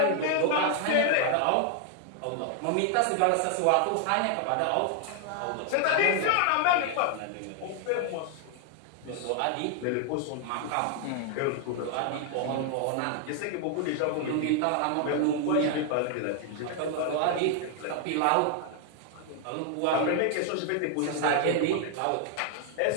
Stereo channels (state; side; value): different; both; correlation 0.00